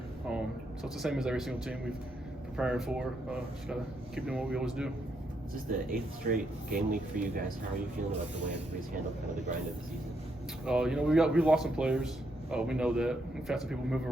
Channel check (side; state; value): both; normal; correlation 0.78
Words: So it's the same as every single team we've preparing for. Just got to keep doing what we always do. This is the 8th straight game week for you guys. How are you feeling about the way everybody's handled kind of the grind of the season? We lost some players. We know that. We've had some people move